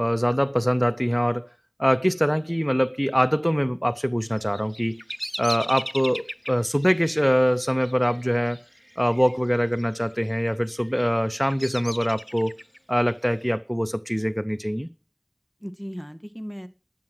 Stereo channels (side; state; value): both; identical; correlation 1.00